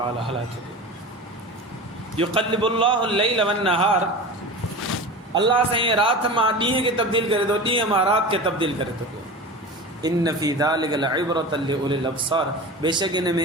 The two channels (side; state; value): both; normal; correlation 0.31